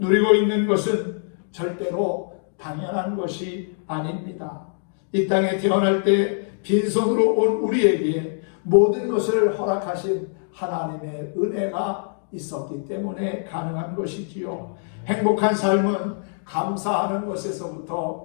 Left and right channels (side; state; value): right; silent; digital silence